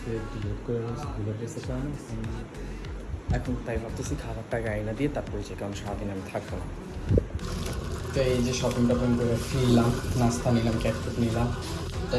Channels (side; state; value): both; identical; correlation 1.00